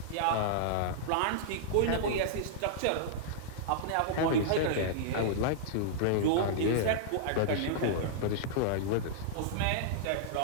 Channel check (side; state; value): both; different; correlation -0.02